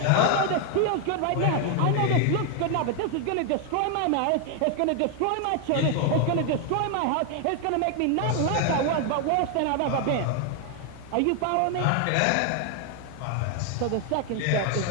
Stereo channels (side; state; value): both; different; correlation 0.01